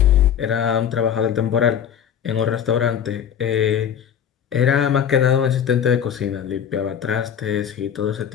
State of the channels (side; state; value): right; quieter; 8.7 dB